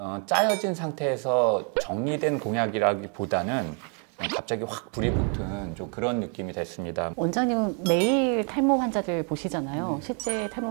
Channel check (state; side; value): quieter; left; 39.9 dB